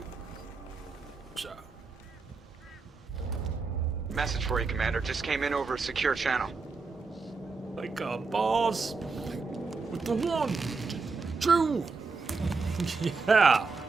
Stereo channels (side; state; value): left; quieter; 4.4 dB